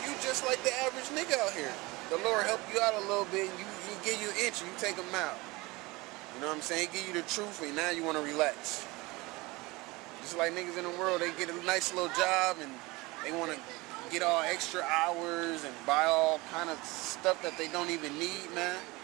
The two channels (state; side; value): quieter; left; 22.9 dB